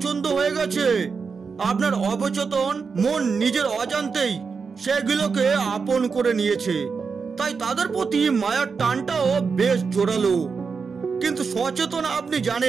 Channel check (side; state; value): left; quieter; 5.3 dB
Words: হয়ে গেছে। আপনার অবচেতন মন নিজের অজান্তেই সেগুলোকে আপন করে নিয়েছে, তাই তাদের প্রতি মায়ার টানটাও বেশ জোরালো। কিন্তু সচেতন আপনি